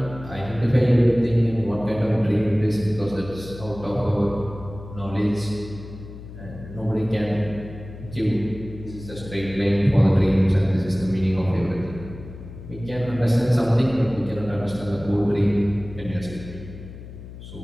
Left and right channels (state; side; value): noise; left; hum, 14 dB below the sound